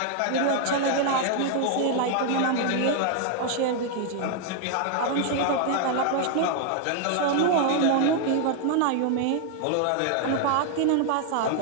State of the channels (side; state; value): both; different; correlation 0.00